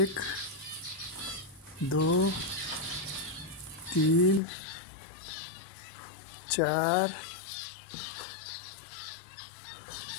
दो, तीन, चार,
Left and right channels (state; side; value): drops out; right; at 4.4 s